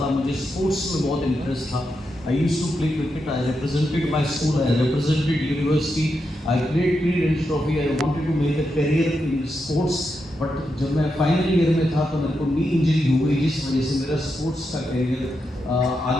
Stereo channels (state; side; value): normal; both; correlation 0.85